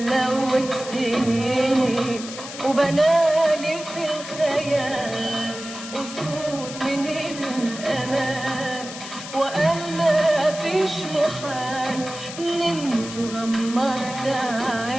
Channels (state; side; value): noise; left; hiss, 11 dB below the sound